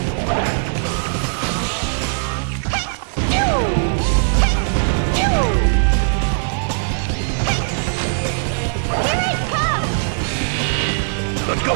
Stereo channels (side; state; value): left; silent; 57 dB below the other